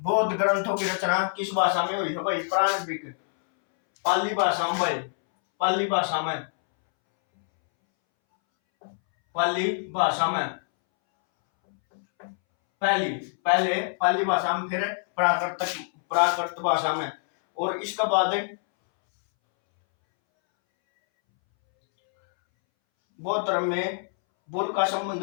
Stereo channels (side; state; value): right; silent; 61 dB below the other